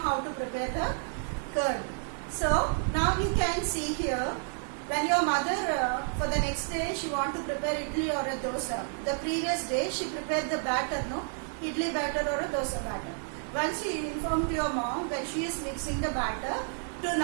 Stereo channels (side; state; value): left; silent; 58 dB below the other